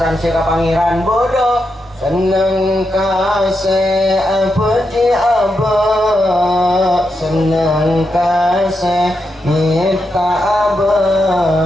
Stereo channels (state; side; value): normal; both; correlation 0.85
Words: seka pangeran bodoh senang kasih apa di abah senang kasih minta